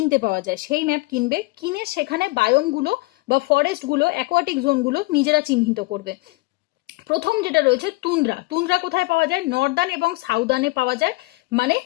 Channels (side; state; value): right; quieter; 23.5 dB